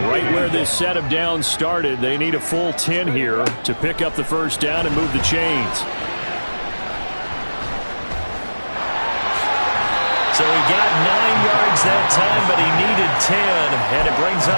Right where this set of downs started, they need a full 10 here to pick up the first down and move the chains. So he got 9 yards that time, but he needed 10, and it brings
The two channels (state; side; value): inverted; both; correlation -1.00